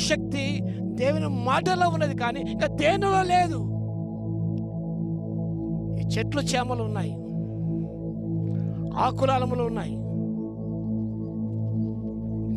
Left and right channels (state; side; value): identical; both; correlation 1.00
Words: శక్తి దేవుని మాటలో ఉన్నది, కానీ ఇంకా దేనిలో లేదు. ఈ చెట్లు చేమలు ఉన్నాయి, ఆకులాలములు ఉన్నాయి,